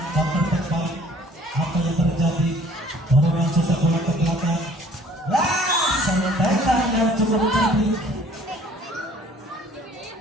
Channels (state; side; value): normal; both; correlation 0.55